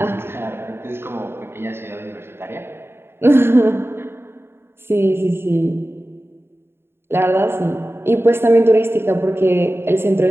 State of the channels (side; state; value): left; late; 0.11 ms